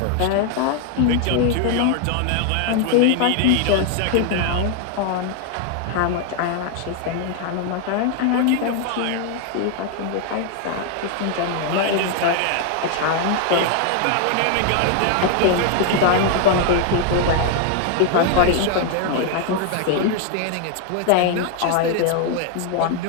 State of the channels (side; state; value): both; different; correlation 0.00